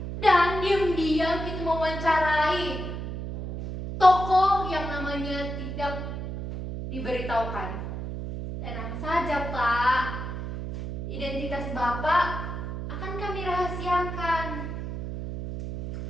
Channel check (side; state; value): right; noise; hum, 6 dB below the sound